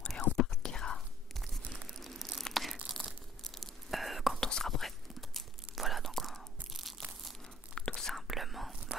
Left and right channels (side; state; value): both; normal; correlation 0.56